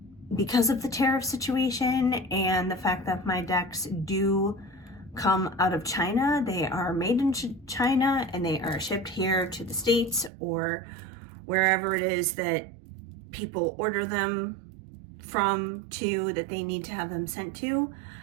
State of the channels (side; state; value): left; drops out; at 10.3 s